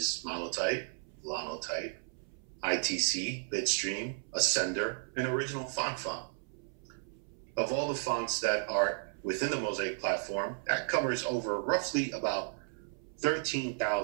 Monotype, Linotype, ITC, Bitstream, Ascender, and Original Font. Of all the fonts that are within the Mosaic platform, that covers over roughly about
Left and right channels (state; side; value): silent; left; 55 dB below the other